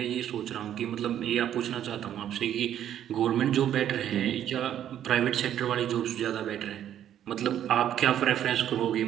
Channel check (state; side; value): quieter; left; 10.6 dB